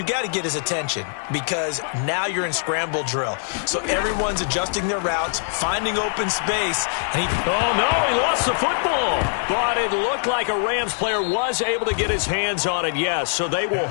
got to get his attention, because now you're in scramble drill. So everyone's adjusting their routes, finding open space, and oh no, he lost the football. But it looked like a Rams player was able to get his hands on it, yes. So they will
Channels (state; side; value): silent; right; digital silence